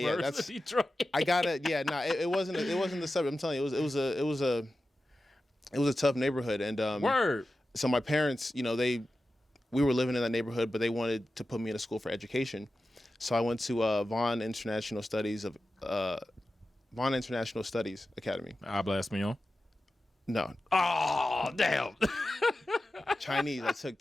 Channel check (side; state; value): both; normal; correlation 0.93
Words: of Detroit. I got it. Yeah, it wasn't the suburb. I'm telling you, it was a tough neighborhood. And Word. So my parents, you know, we were living in that neighborhood, but they wanted to put me in a school for education. So I went to Vaughan International Studies Academy. Habla español? No. Oh, damn. Chinese. I took